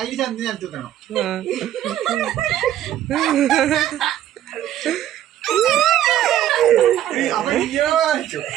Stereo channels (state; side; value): quieter; left; 12.0 dB